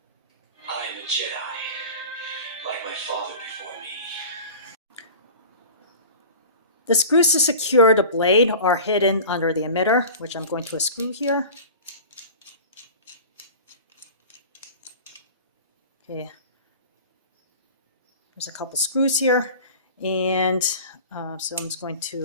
I am a Jedi, like my father before me. The screws to secure the blade are hidden under the emitter, which I'm going to unscrew here. Okay, there's a couple screws here, and so I'm just going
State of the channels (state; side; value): inverted; both; correlation -0.37